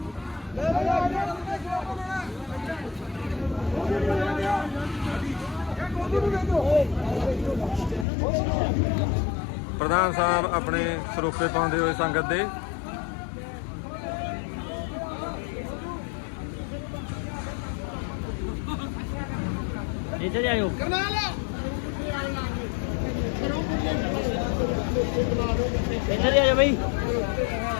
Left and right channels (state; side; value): drops out; right; at 8.1 s